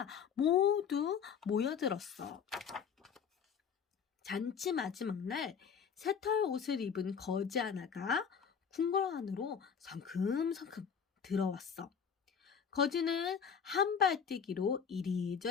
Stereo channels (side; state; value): right; quieter; 7.0 dB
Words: 모두 모여들었어. 잔치 마지막 날 새털 옷을 입은 거지 하나가 궁궐 안으로 성큼성큼 들어왔어. 거지는 한 발 뛰기로